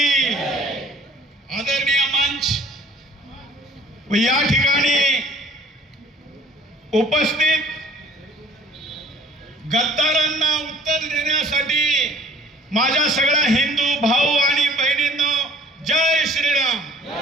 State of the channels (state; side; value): normal; both; correlation 0.53